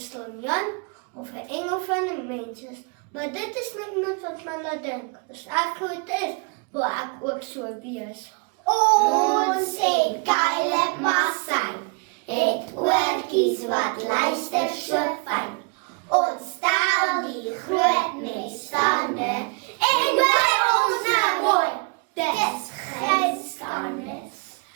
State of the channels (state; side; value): quieter; left; 34.4 dB